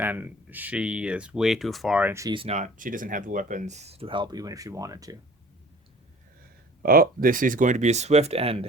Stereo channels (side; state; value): both; normal; correlation 0.47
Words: she is way too far, and she doesn't have the weapons to help even if she wanted to. Oh, this is going to be a swift